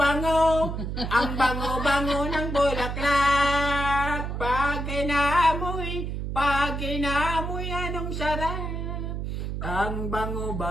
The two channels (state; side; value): noise; right; hum, 4 dB below the sound